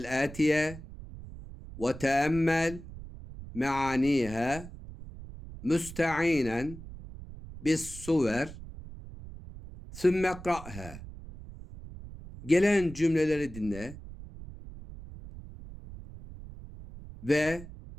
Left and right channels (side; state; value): right; noise; rumble, 14 dB below the sound